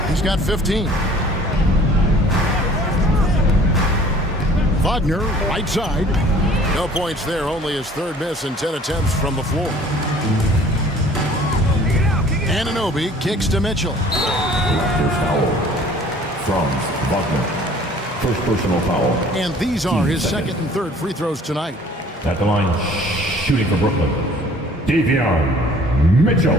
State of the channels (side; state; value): both; normal; correlation 0.52